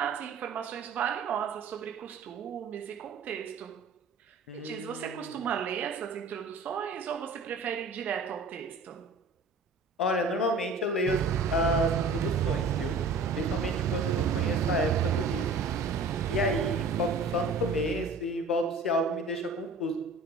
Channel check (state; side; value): quieter; left; 3.4 dB